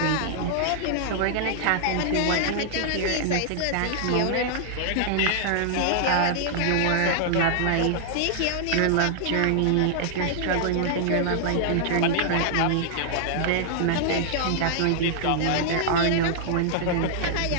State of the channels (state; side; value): different; both; correlation -0.01